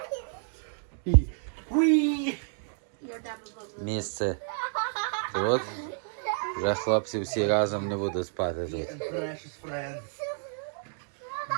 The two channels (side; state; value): left; silent; digital silence